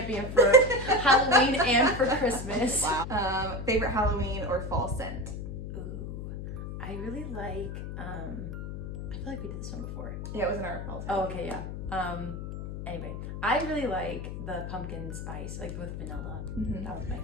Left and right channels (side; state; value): left; noise; hum, 7 dB below the sound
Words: for Halloween and for Christmas. Wow. Favorite Halloween or fall scent? Ooh, I really like, I feel like we did this one before. Yeah, it was in our fall scent. Oh, okay, yeah. Anyway, I really like the pumpkin spice, like with vanilla. That was my